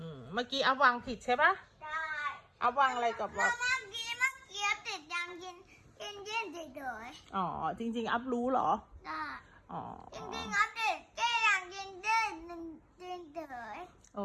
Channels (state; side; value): identical; both; correlation 1.00